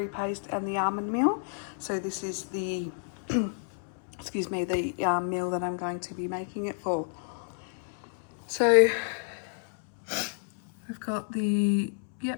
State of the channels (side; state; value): right; silent; 58 dB below the other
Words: paste and the almond meal. So this is the excuse me, the meal that I'm going to be making it for. So I've got the,